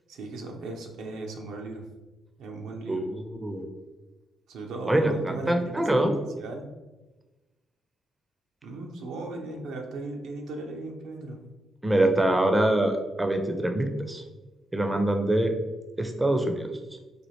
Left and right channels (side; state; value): both; normal; correlation 0.88